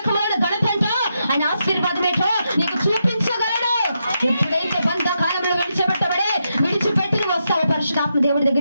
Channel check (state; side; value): inverted; both; correlation -0.84